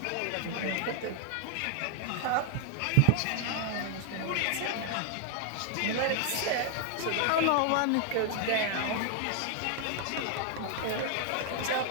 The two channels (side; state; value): both; different; correlation 0.00